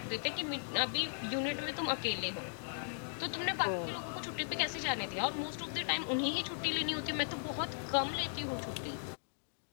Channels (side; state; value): right; silent; digital silence